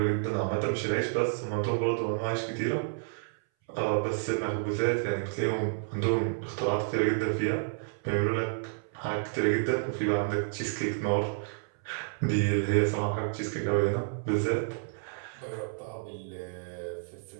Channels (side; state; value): left; silent; 58 dB below the other